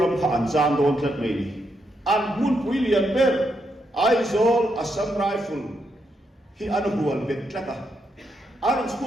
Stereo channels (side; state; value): both; normal; correlation 0.80